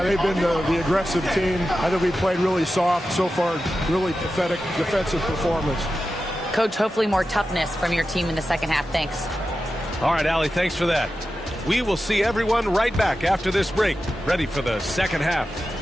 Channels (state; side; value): normal; both; correlation 0.92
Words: they've been the aggressive team. I think we played really soft so far. Really pathetic defensive performance. Coach, hopefully more toughness from your team in the second half. Thanks. All right, Allie, thanks for that. We will see everyone right back after this break, ready for the second half.